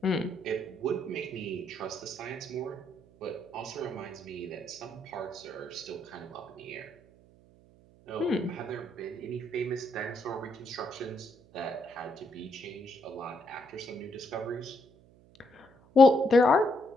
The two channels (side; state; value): right; noise; hum, 26 dB below the sound